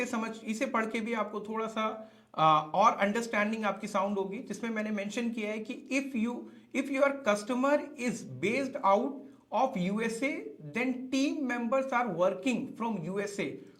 पढ़ के भी आपको थोड़ा सा और अंडरस्टैंडिंग आपकी साउंड होगी, जिसमें मैंने मेंशन किया है कि if your customer is based out of USA then team members are working from USA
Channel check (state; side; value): identical; both; correlation 1.00